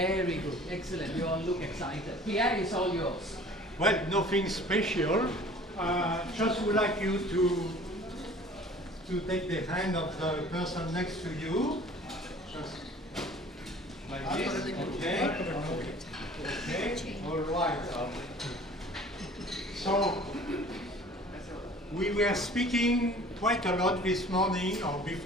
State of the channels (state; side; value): normal; both; correlation 0.48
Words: good. Excellent. You all look excited. Pierre, it's all yours. Well, nothing special. Just would like you to take the hand of the person next to you. Just like this. Okay. All right. So we were speaking quite a lot this morning or